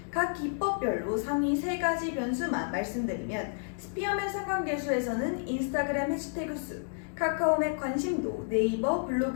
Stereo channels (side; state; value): right; silent; digital silence